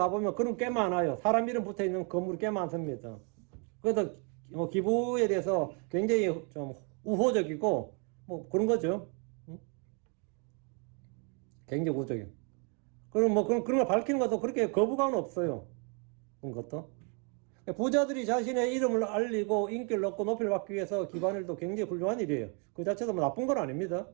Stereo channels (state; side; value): quieter; left; 37.2 dB